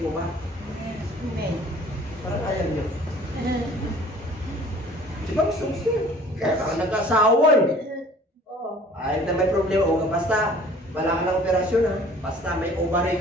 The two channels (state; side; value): normal; both; correlation 0.51